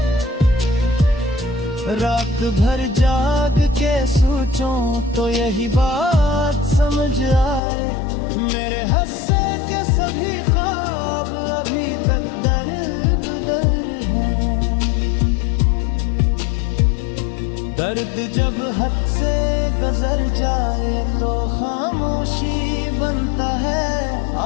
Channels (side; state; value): right; drops out; at 7.6 s